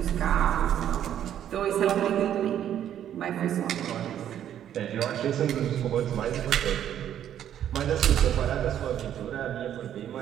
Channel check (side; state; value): left; quieter; 10.4 dB